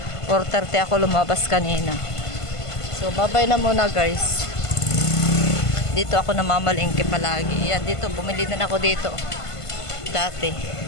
4:30 ako lumabas kanina. So, babay na muna guys. Dito ako namamalingki palagi. Yan, dito. Bumili din ako dito. Dati.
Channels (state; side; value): late; right; 1.5 ms